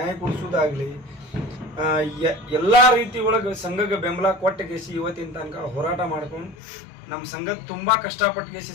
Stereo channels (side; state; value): right; drops out; at 6.6 s